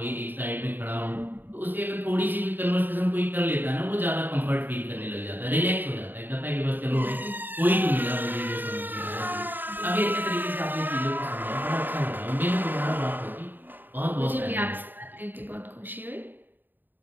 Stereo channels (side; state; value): left; late; 0.091 ms